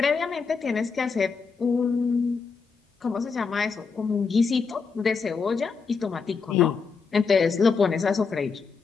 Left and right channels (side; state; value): right; quieter; 5.1 dB